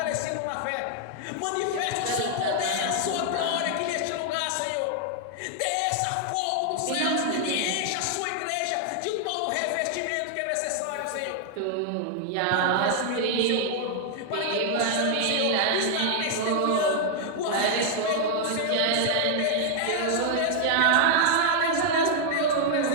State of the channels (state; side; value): different; both; correlation 0.00